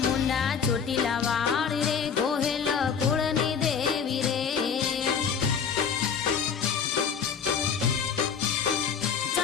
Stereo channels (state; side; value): quieter; right; 6.8 dB